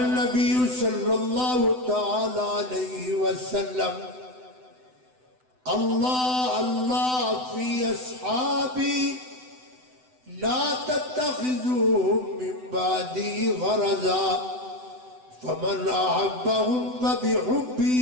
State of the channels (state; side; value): late; left; 7.9 ms